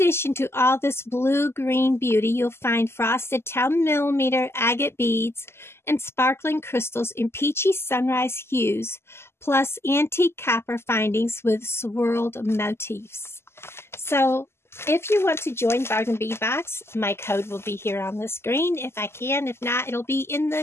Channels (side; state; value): right; late; 0.12 ms